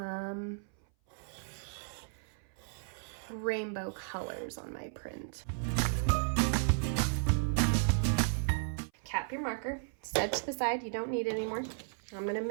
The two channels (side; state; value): left; silent; 55 dB below the other